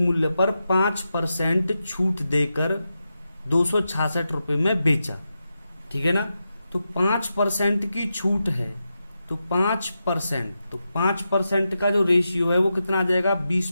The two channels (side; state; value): both; inverted; correlation -0.89